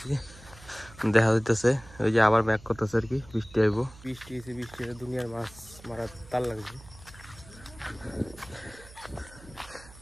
দেখা যাইতেছে ওই যে আবার ব্যাক করতেছে আর কি, বৃষ্টি আইব। বৃষ্টি হয়েছে, বৃষ্টি দুনিয়ার মাছ মারার তার লাগছে।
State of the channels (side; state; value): right; noise; hum, 20 dB below the sound